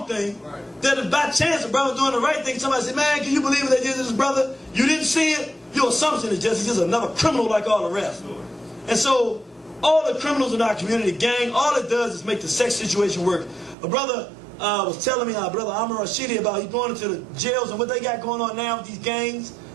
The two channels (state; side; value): drops out; left; at 13.8 s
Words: thing that if by chance a brother doing the right thing, somebody say, man, can you believe what they did to this brother? You didn't see it. Your assumption is he's just another criminal like all the rest. And so all the criminals in our community, gang, all it does is make the sex situation work. A brother was telling me, brother Amr Rashidi, about he's going into the jails and what they got going on now with these gangs